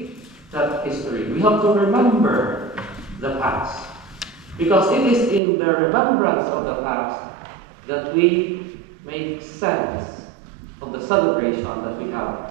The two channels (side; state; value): left; drops out; at 5.4 s